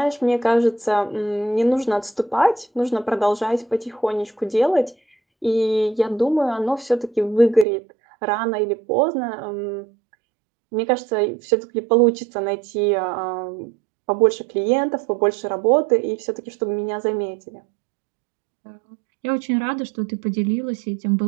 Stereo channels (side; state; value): left; drops out; at 7.7 s